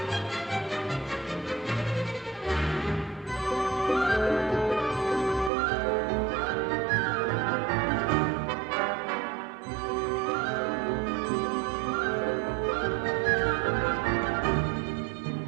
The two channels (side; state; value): left; drops out; at 5.5 s